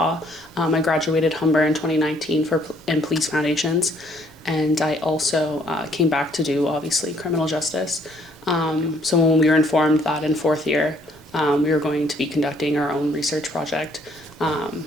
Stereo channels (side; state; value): both; normal; correlation 0.65